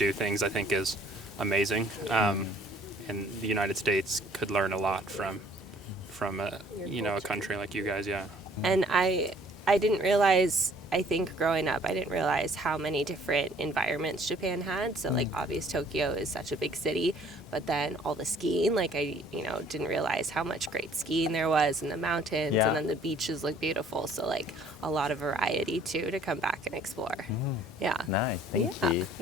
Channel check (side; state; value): both; normal; correlation 0.57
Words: things, I think, is amazing. And the United States could learn a lot from a country like you guys. Yeah. And I didn't realize, I think growing up, I didn't realize how many different environments Japan had. So like obvious Tokyo is such a big city, but then all the skiing, like I didn't realize how much great skiing there was in the mountains, Yeah. and then the beaches look beautiful. So like a lot of variety too to come back and explore. Yeah. Nice, thank Yeah.